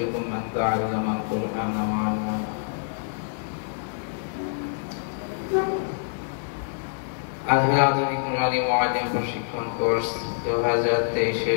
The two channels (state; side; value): silent; right; 61 dB below the other